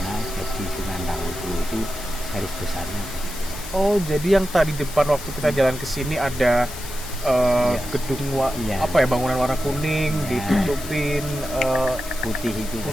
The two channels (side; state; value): left; noise; hiss, 12 dB below the sound